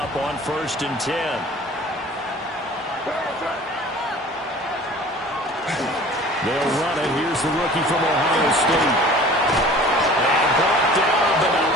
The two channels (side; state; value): both; normal; correlation 0.45